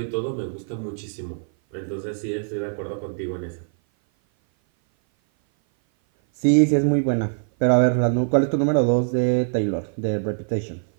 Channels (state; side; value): silent; left; 57 dB below the other